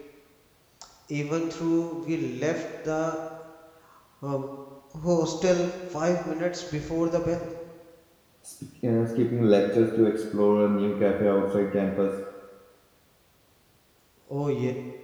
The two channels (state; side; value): identical; both; correlation 1.00